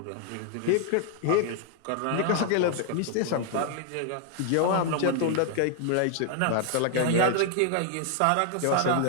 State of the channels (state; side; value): different; both; correlation 0.00